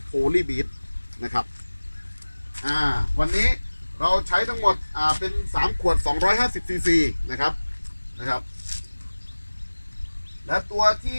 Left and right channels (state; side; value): inverted; both; correlation -1.00